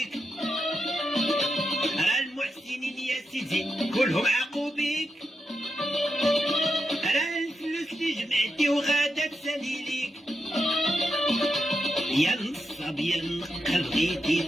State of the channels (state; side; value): normal; both; correlation 0.86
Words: راه المحسنين يا سيدي كلهم عاقوا بيك راه الفلوس اللي جمعتي وغادا تسالي ليك يا نصاب يا نقل بغيتي